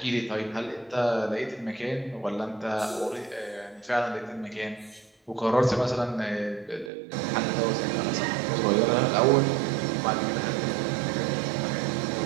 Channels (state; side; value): drops out; left; at 6.9 s